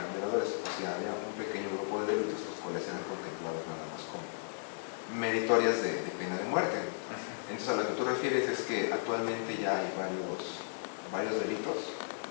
violadores. O sea, había un pequeño grupo de delitos los cuales eran contemplados nada más como meritorias de pena de muerte. Entonces, a lo que tú refieres es que actualmente ya hay varios delitos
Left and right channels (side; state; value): right; silent; 54 dB below the other